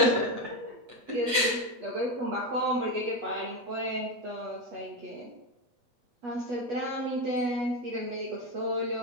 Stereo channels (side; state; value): left; late; 8.0 ms